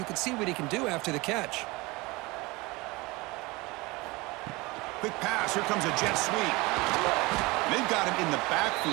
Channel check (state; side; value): quieter; left; 23.2 dB